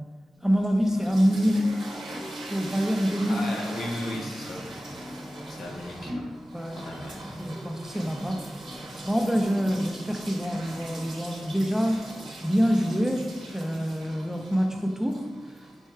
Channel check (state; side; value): normal; both; correlation 0.96